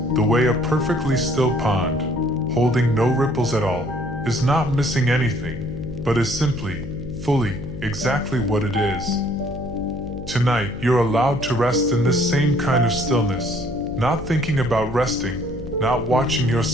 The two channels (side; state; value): left; noise; hum, 10 dB below the sound